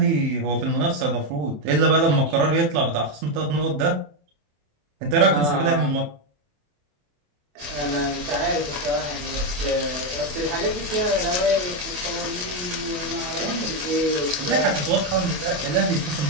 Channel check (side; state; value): left; late; 27 ms